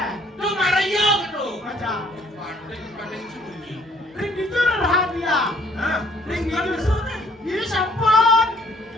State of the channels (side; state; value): both; normal; correlation 0.62